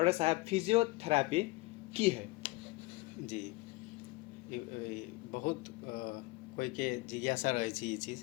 साहब, फिजियोथेरेपी की है? जी, बहुत कोई के जिज्ञासा रहे छी ये चीज़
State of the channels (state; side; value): quieter; right; 21.4 dB